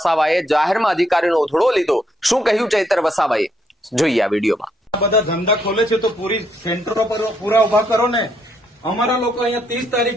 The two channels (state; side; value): normal; both; correlation 0.74